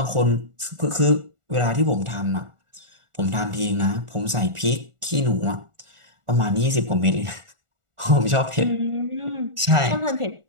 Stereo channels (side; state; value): left; late; 1.4 ms